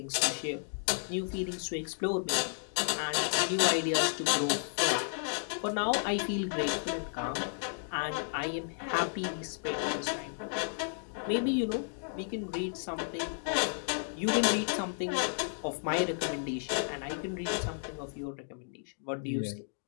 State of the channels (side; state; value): right; silent; digital silence